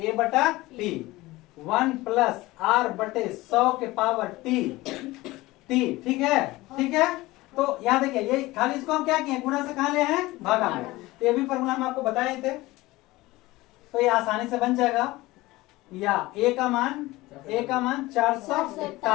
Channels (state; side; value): quieter; right; 19.5 dB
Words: बटा पी 1 प्लस आर बटे 100 के पावर टी, ठीक है, ठीक है। तो यहाँ देखिए, ये खाली इसको हम क्या किए, गुणा से कहा ले हैं, भागा में। तो ये भी फॉर्मूला हम आपको बताए थे, तो ये आसानी से बन जाएगा। या ए का मान